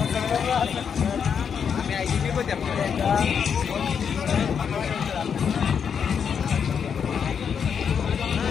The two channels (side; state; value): right; quieter; 7.1 dB